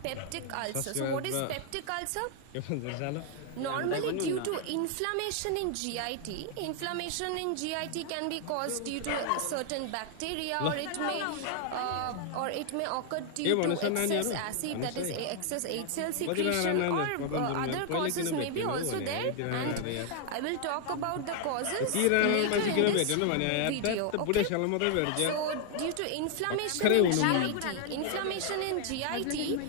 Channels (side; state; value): both; different; correlation 0.00